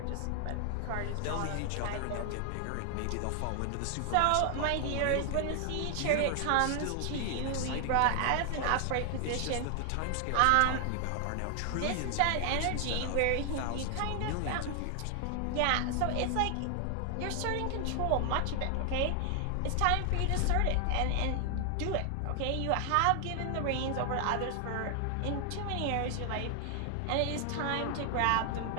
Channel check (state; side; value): different; both; correlation 0.00